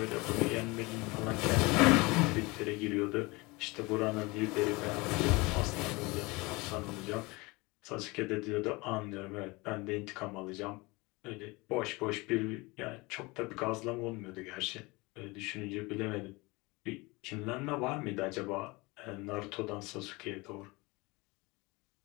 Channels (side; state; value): right; quieter; 24.3 dB